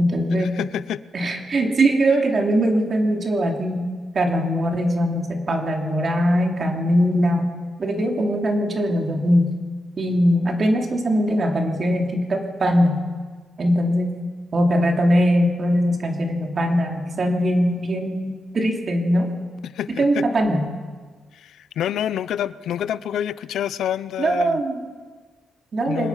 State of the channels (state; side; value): normal; both; correlation 0.87